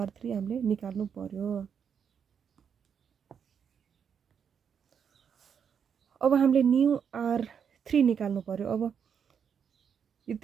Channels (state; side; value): quieter; left; 7.4 dB